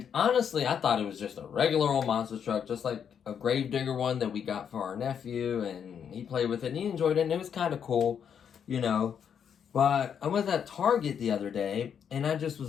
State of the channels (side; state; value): right; quieter; 7.9 dB